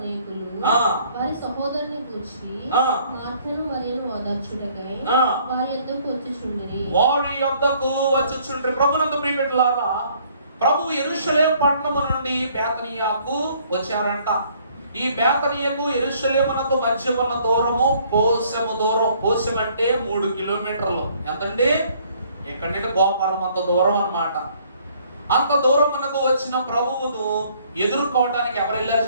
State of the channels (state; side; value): inverted; both; correlation -0.62